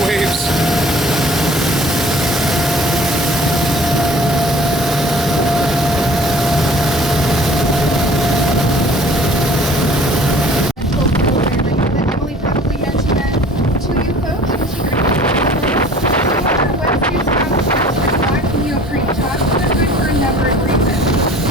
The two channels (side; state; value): both; normal; correlation 0.49